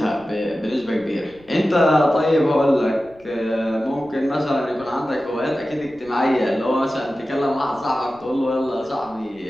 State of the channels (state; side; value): noise; left; rumble, 28 dB below the sound